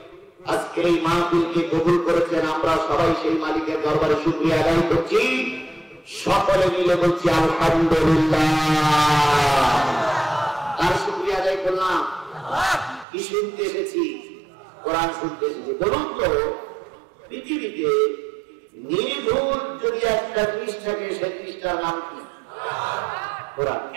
আজকে এই মাহফিলকে কবুল করেছেন, আমরা সবাই সেই মালিকের দরবারে শুকরিয়া আদায় করছি। সকলে মিলে বলছি আলহামদুলিল্লাহ। তার শুকরিয়া আদায় করলাম। কি শুনতে এসেছি? কোরআন শুনতে এসেছি। বলুন তো, পৃথিবীতে নির্ভুল যদি একটা জিনিস থাকে, সেই জিনিসটার নাম কি? কোরআন।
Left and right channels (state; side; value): drops out; left; at 13.1 s